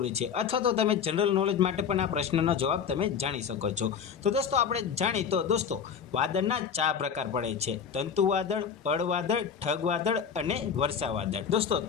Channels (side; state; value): right; quieter; 7.1 dB